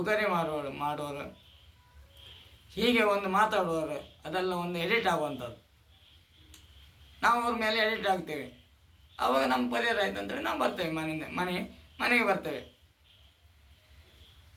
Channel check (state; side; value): identical; both; correlation 1.00